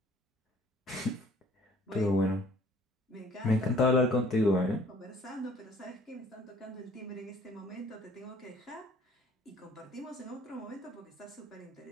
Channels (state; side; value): normal; both; correlation 0.56